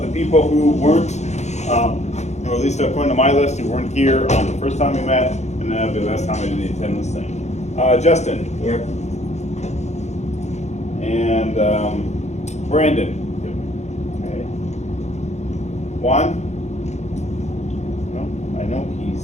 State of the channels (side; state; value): right; late; 0.33 ms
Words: people who weren't, or at least according to my list, who weren't here on the first time we met, and then the last time I did the attendance thing. Justin. Here. And Brandon. Okay. Juan? No, I know